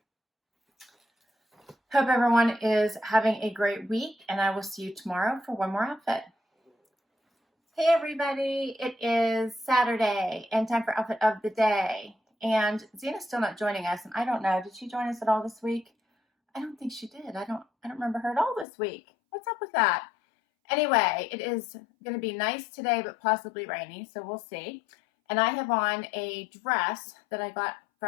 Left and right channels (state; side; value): drops out; right; at 18.7 s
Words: hope everyone is having a great week, and I will see you tomorrow for one more outfit. Hey everybody, it is Saturday and time for outfit of the day. And Zena's still not joining us, and I don't know, did she join us at all this week? I don't think she did. I don't remember her at all this week. What's up with that? Anyway, it is going to be nice today, but possibly rainy, so we'll see. And I have on a dress that I got